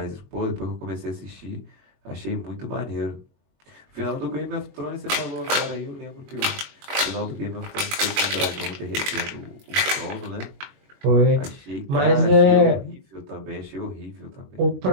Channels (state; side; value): late; left; 21 ms